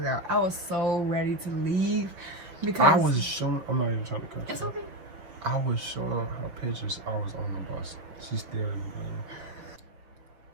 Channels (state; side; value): late; left; 6.1 ms